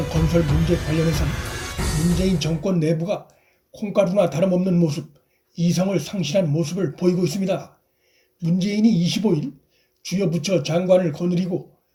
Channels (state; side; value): identical; both; correlation 1.00